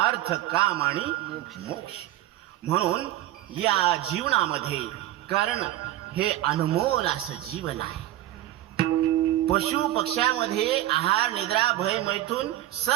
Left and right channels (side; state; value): left; quieter; 14.5 dB